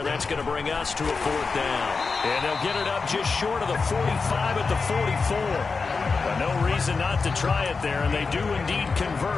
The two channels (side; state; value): right; quieter; 4.5 dB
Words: That's going to bring us to a 4th down. And they'll get it up just short of the 45 at the 44. But no reason not to try it there, and they do indeed